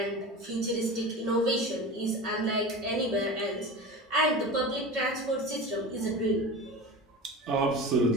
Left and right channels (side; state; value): both; normal; correlation 0.30